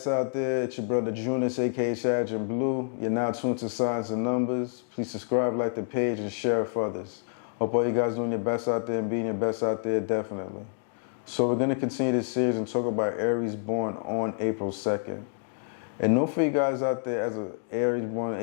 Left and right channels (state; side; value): silent; right; digital silence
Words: out there. It's your brother Junus, aka Sergeant Blue. You're now tuned to Signs and Numbers. Please subscribe, like the page, and share it for others. Hope all you guys doing your best out there and being your best out there, definitely. So we're going to continue this series and talk about Aries born on April 2nd. And know for you guys out there, as an Aries born on